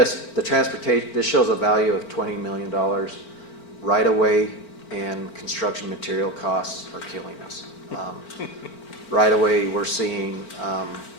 transportation, this shows a value of $20 million. Right away and construction material costs are killing us. Right away, we're seeing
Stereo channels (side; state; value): right; late; 4.4 ms